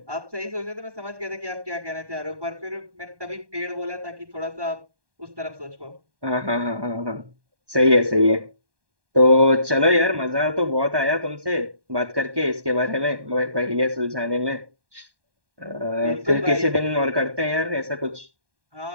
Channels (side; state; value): left; late; 1.2 ms